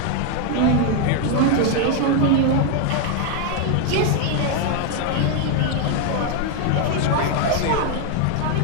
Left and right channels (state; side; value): different; both; correlation 0.01